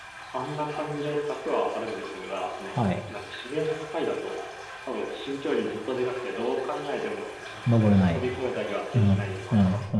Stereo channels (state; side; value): identical; both; correlation 1.00